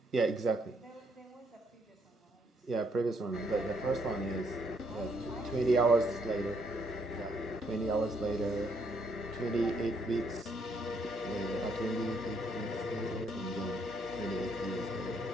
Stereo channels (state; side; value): normal; both; correlation 0.72